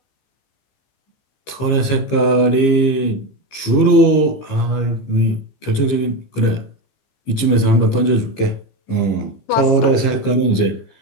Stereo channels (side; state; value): right; late; 15 ms